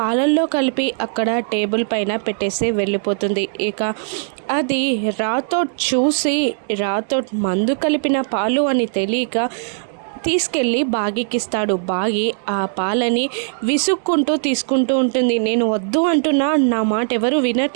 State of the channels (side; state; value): left; silent; digital silence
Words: కలిపి అక్కడ టేబుల్ పైన పెట్టేసి వెళ్ళిపోతుంది. ఇక అది రాథోడ్ చూసి, రాథోడ్ మందు కలిపిన పాలు అని తెలియక తీసుకెళ్ళి బాగీకిస్తాడు. బాగి ఆ పాలని విసుక్కుంటూ తీసుకుంటూ ఉంటుంది. నేను వద్దు అంటున్నా, నా మాట ఎవరు